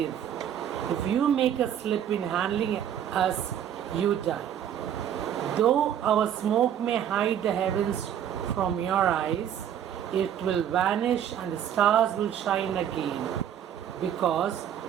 If you make a slip in handling us, you die. Though our smoke may hide the heavens from your eyes, it will vanish and the stars will shine again. Because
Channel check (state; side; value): quieter; left; 9.7 dB